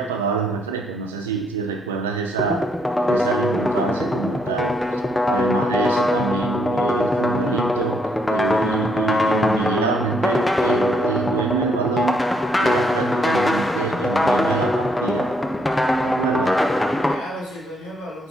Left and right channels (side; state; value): both; normal; correlation 0.72